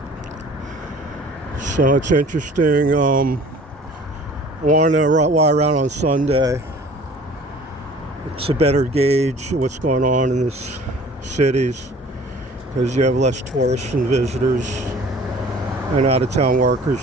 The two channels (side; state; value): both; normal; correlation 0.48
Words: So it's interesting. I wanted to ride around on Sunday. It's a better gauge of what's going on in these cities because you have less tourists and visitors and out-of-town